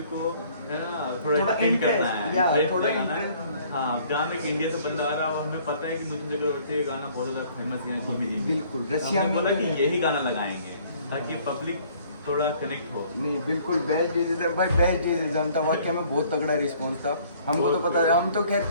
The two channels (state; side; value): inverted; both; correlation -0.58